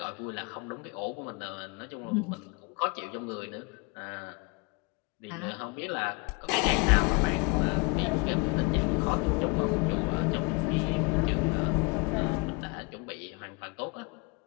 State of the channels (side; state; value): right; quieter; 30.0 dB